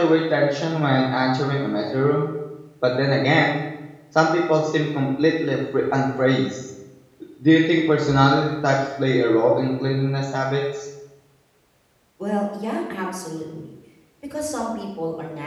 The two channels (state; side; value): identical; both; correlation 1.00